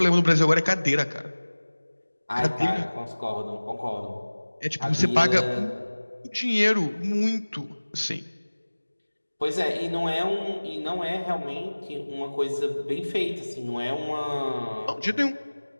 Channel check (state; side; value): inverted; both; correlation -1.00